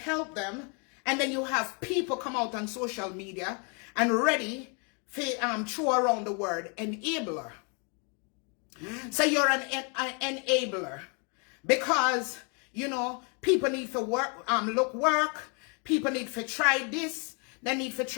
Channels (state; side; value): quieter; right; 36.4 dB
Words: them. And then you have people come out on social media and ready for throw around the word enabler. So you're an enabler because, you know, people need to work, work. People need to try this. They need to